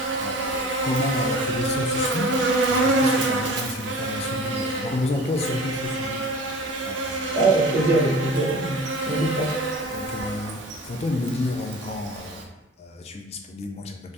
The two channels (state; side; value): normal; both; correlation 0.41